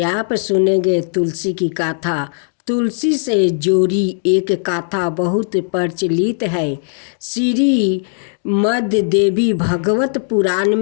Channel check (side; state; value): right; silent; digital silence